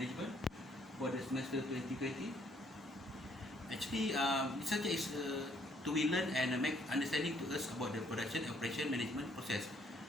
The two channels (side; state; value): both; normal; correlation 0.66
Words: for the semester 2020. Actually, this subject is to be learned and make understanding to us about the production, operation, management process,